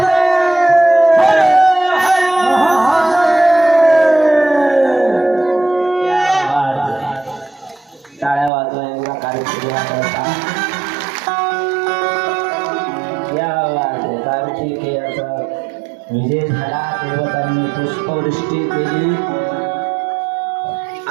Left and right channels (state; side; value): drops out; left; at 8.5 s